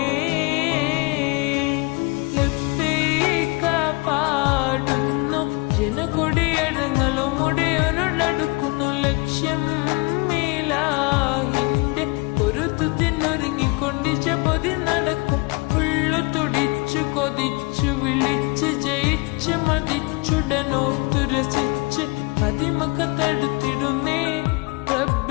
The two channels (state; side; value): quieter; right; 27.1 dB